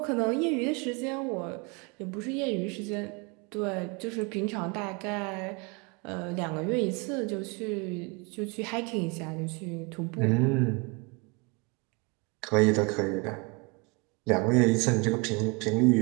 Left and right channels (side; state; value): left; quieter; 29.2 dB